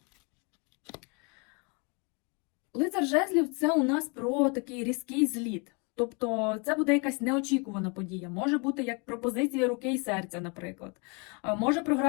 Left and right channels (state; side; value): quieter; right; 32.6 dB